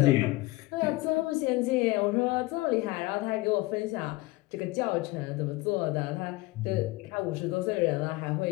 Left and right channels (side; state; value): right; quieter; 20.8 dB